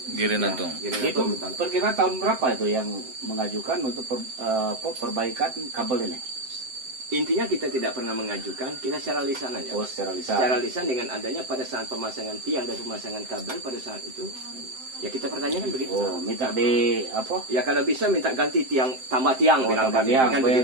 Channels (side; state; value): left; late; 7.7 ms